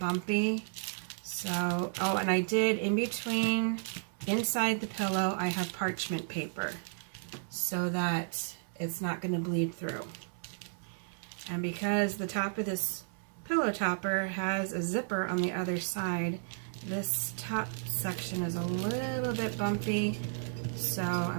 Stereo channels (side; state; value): left; silent; digital silence